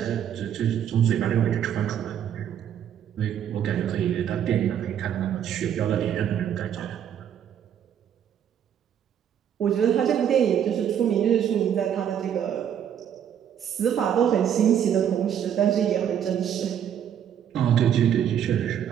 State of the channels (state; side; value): quieter; left; 9.3 dB